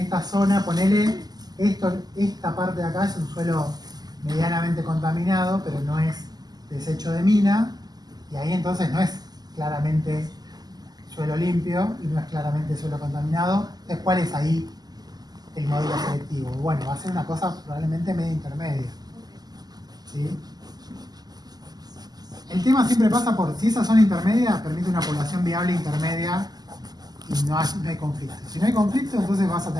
zona, ponele, esta parte de acá es un suelo medianamente contaminado, pero no es desecho de mina, y ahí entonces no es claramente suelo limpio y no es claramente suelo contaminado. Entonces, ¿cuál es ahí el modelo selectivo? Bueno, va a ser una cosa probablemente media intermedia. ¿Sí? El tema siempre pasa por si esa zona intermedia permite una población viable intermedia y no hay conflicto. Si no hay conflicto, entonces vas a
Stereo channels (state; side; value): late; left; 0.20 ms